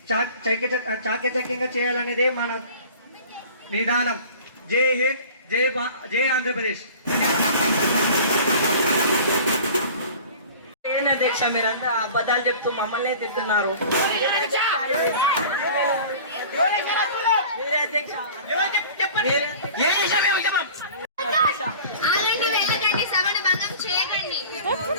చాకచక్యంగా చేయాలనేది మన విధానం. జై హింద్, జై ఆంధ్రప్రదేశ్. ఏంటి అధ్యక్ష, మీరంతా అబద్ధాలు చెప్తూ మమ్మల్ని తింటున్నారు. మీరే అధ్యక్ష. సభను భంగం చేయకండి.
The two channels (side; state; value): both; inverted; correlation -0.42